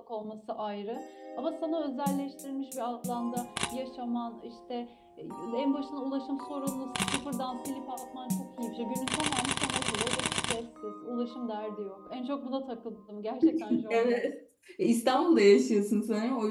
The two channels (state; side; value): identical; both; correlation 1.00